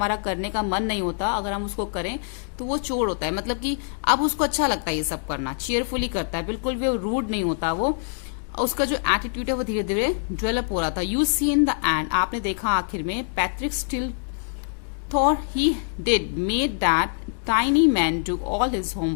करने का मन नहीं होता अगर हम उसको करें तो वो चोर होता है, मतलब कि अब उसको अच्छा लगता है ये सब करना, चेयरफुली करता है, बिल्कुल भी रूड नहीं होता वो। उसका जो एटीट्यूड है वो धीरे धीरे डेवलप हो रहा था। You see in the end, आपने देखा आखिर में, Patrick still thought he did made that tiny man do all his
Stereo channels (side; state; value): right; silent; digital silence